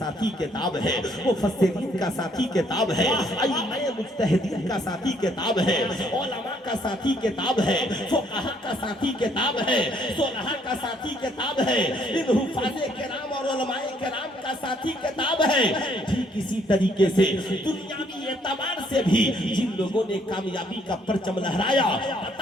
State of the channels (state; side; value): normal; both; correlation 0.67